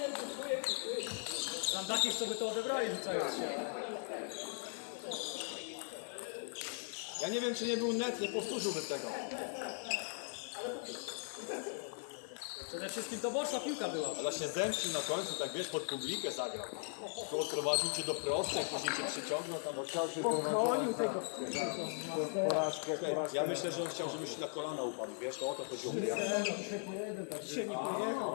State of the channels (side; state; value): right; silent; 52 dB below the other